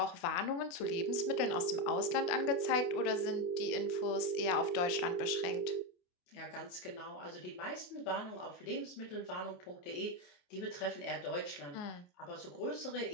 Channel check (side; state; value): right; late; 28 ms